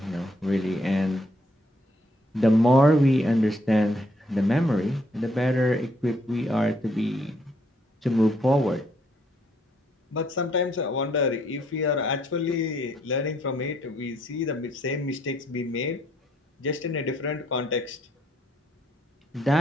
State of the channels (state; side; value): normal; both; correlation 0.70